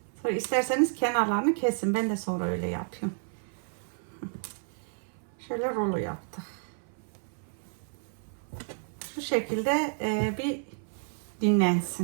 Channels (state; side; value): silent; left; 57 dB below the other